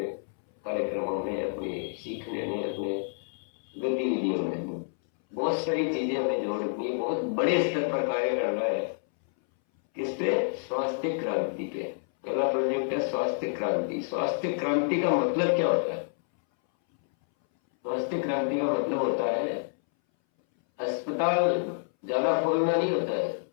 कार्यक्रमों में, अपने सीखने में, अपने गतिविधियों में। बहुत सारी चीजें हमें जोड़नी है, बहुत बड़े स्तर पर कार्य करना है। किस पे? स्वास्थ्य क्रांति पे। पहला प्रोजेक्ट है स्वास्थ्य क्रांति। स्वास्थ्य क्रांति का मतलब क्या होता है? स्वास्थ्य क्रांति का मतलब होता है अस्पताल ज्यादा खोलना नहीं होता है।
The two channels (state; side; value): silent; right; 59 dB below the other